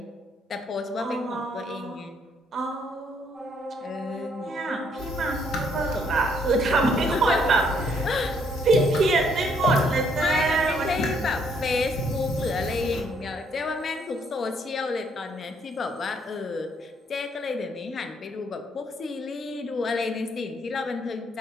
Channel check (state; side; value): normal; both; correlation 0.68